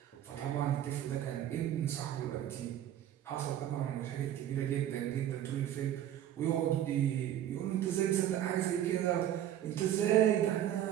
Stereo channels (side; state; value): left; quieter; 11.5 dB